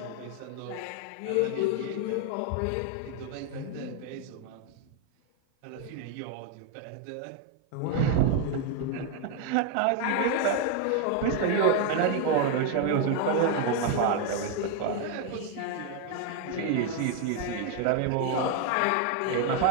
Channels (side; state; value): both; different; correlation 0.01